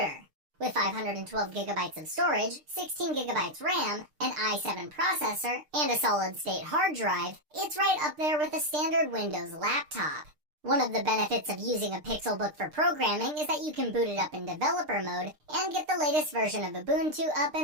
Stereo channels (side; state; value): left; late; 6.6 ms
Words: With 512GB of storage, 16GB RAM, an i7 processor, and a solid-state hard drive, it's right up there with a standard Windows laptop. One of the benefits of using a Pixelbook for programming is that you can boot it up in developer mode and get the latest version of Ubuntu up